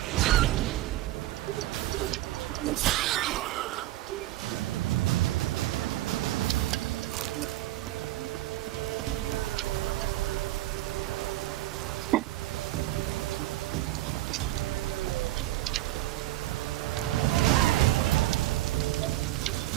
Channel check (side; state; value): left; quieter; 16.0 dB